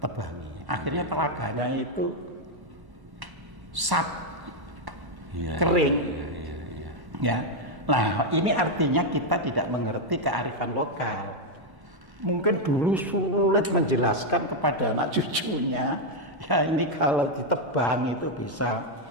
Akhirnya telaganya itu kering. Iya. Ya. Nah, ini artinya kita tidak mengerti kearifan lokal. Mungkin dulu sulit menjelaskan kepada anak cucunya. Ya ini kalau ditebang itu bisa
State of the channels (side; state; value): left; late; 1.1 ms